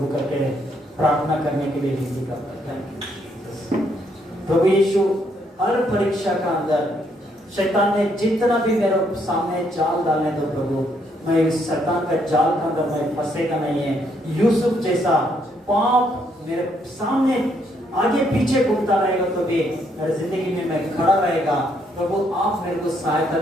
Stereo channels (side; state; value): both; normal; correlation 0.72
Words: करके प्रार्थना करने के लिए विनती करता है। प्रभु यीशु हर परीक्षा का अंदर शैतान ने जितना भी मेरे सामने जाल डालने दो प्रभु, मैं इस शैतान का जाल के अंदर मैं फंसेगा नहीं है। यूसुफ जैसा पाप मेरे सामने आगे पीछे घूमता रहेगा तो भी मेरी जिंदगी में मैं खड़ा रहेगा। प्रभु आप मेरे को सहायता